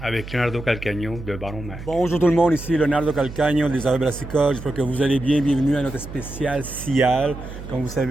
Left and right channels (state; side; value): noise; right; hum, 12 dB below the sound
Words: avec Leonardo Calcagno de Baron Mag. Bonjour tout le monde, ici Leonardo Calcagno des Affaires Brassicole. J'espère que vous allez bien. Bienvenue à notre spécial CIAL. Comme vous